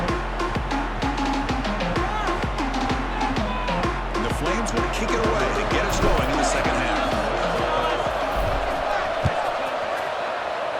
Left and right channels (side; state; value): both; identical; correlation 1.00